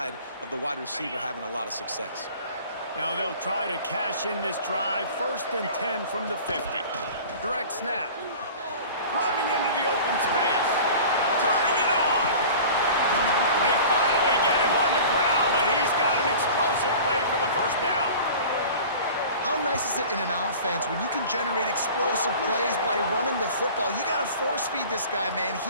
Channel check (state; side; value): inverted; both; correlation -0.41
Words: of the wide receiver having a lot of success. Now they'll try to cash in this drive. 1st and 10 from the 50. Direct snap. Running into the open space. Turning it on. They finally get him on the ground, but he's got an explosive play for the first down. How nice is it in an offense when you can generate explosive plays by running the football? You got to force feed this guy, man.